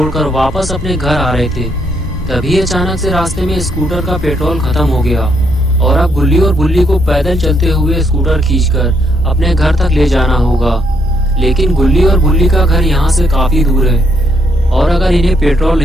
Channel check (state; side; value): normal; both; correlation 0.74